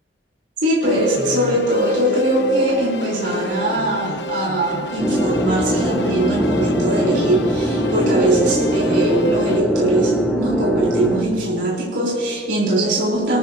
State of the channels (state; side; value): normal; both; correlation 0.40